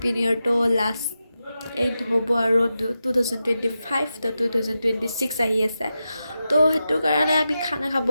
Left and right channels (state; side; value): inverted; both; correlation -0.90